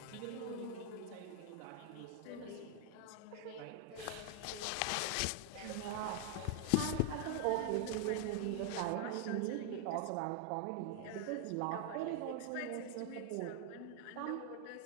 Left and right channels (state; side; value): different; both; correlation 0.00